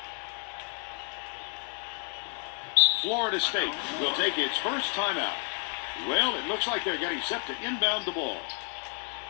Florida State will take its first timeout. Well, it looks like they're getting set to inbound the ball.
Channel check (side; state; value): right; quieter; 39.9 dB